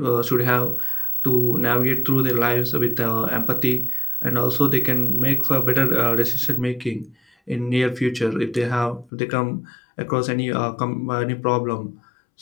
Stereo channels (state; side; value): drops out; right; at 9.1 s